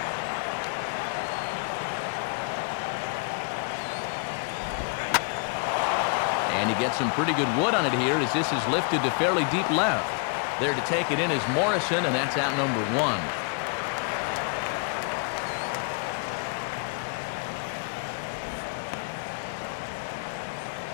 And he gets some pretty good wood on it here as this is lifted to fairly deep left. There to take it in is Morrison, and that's out number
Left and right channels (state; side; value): quieter; right; 37.7 dB